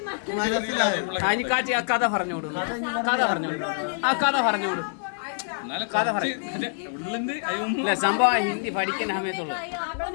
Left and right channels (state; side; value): silent; right; 61 dB below the other